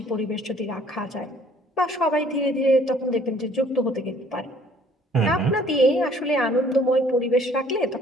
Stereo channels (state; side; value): normal; both; correlation 0.58